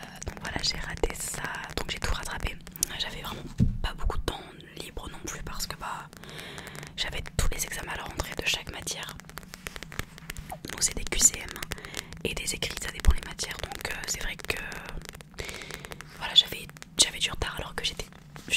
j'ai raté ça, donc j'ai tout rattrapé. J'avais vraiment pas beaucoup de temps libre non plus parce que bah j'avais tous les examens à la rentrée de chaque matière. Donc c'est des QCM et des écrits, ça dépend les matières. Donc c'est vrai que voilà, j'avais du retard alors que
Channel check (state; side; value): identical; both; correlation 1.00